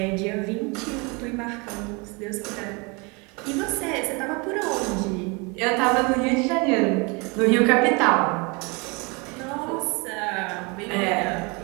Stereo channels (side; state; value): left; quieter; 29.4 dB